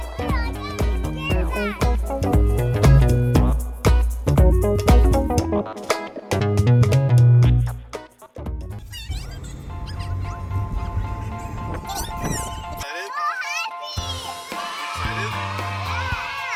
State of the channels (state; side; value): identical; both; correlation 1.00